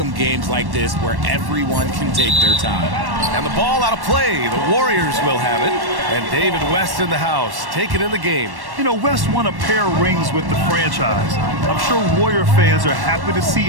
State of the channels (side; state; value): left; late; 1.1 ms